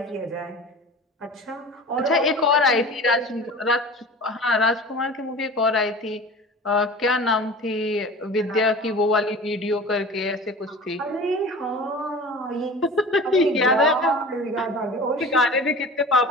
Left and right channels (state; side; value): normal; both; correlation 0.38